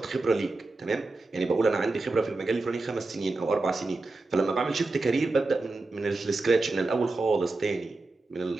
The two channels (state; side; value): quieter; left; 3.3 dB